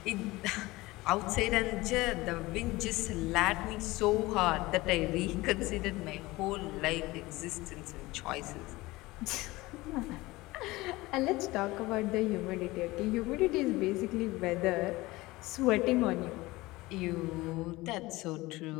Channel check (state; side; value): quieter; right; 20.3 dB